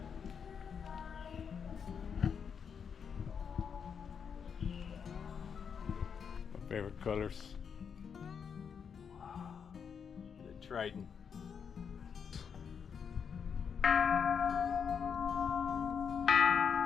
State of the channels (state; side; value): quieter; right; 6.8 dB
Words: My favorite colors. The Trident.